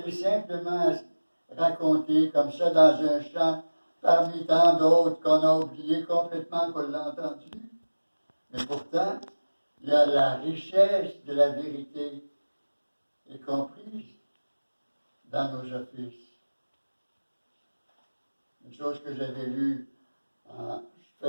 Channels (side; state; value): both; inverted; correlation -1.00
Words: est simplement racontée comme ça dans un chant, parmi tant d'autres qu'on a oublié complètement qu'on l'a entendu, mais pourtant, il y a la richesse de la vérité est comprise dans nos offices. Une chose que j'avais lue en